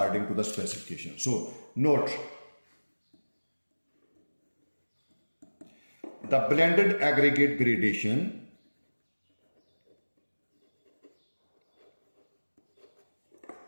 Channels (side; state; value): both; inverted; correlation -1.00